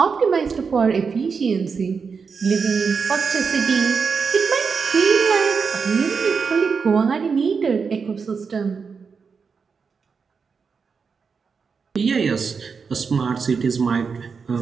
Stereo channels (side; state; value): left; quieter; 5.5 dB